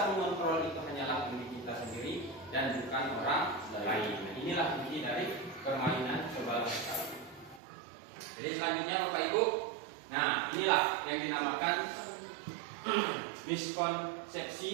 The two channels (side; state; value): left; drops out; at 7.6 s